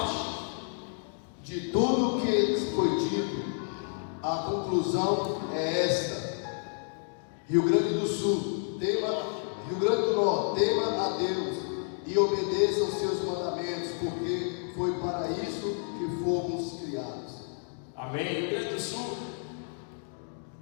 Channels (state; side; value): silent; right; 58 dB below the other